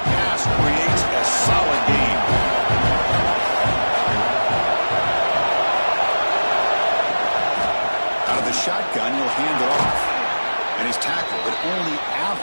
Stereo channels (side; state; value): both; inverted; correlation -1.00